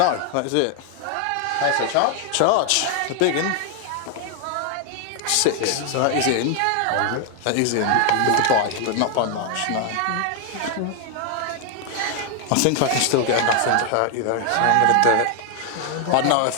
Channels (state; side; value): different; both; correlation 0.00